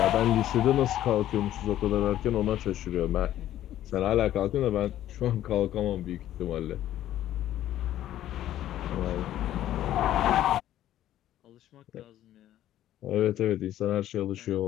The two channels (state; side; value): quieter; right; 12.7 dB